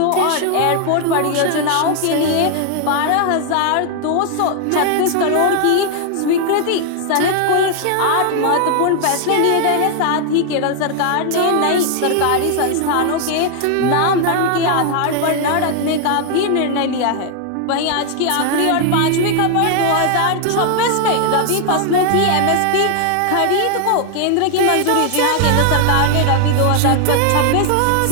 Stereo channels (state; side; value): different; both; correlation 0.00